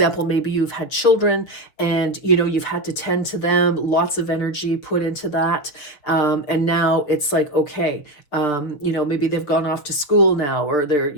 maybe you've had children and, you know, you've had to tend to them, lots of energy put into that. And now it's like, okay, you know, maybe they've gone off to school now, or they're,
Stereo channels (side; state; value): right; late; 6.8 ms